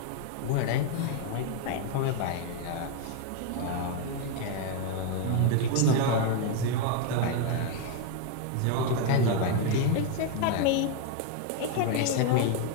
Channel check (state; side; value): different; both; correlation 0.01